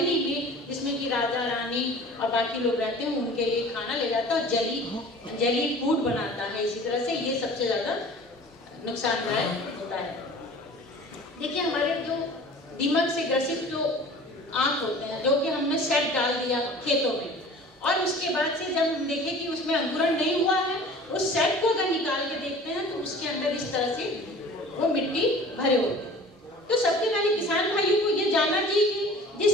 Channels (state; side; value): normal; both; correlation 0.44